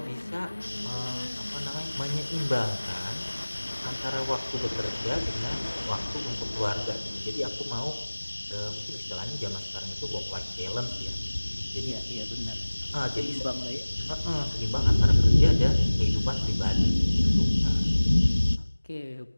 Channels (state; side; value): inverted; both; correlation -1.00